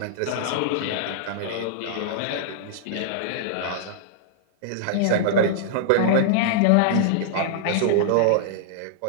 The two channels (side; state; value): both; different; correlation -0.02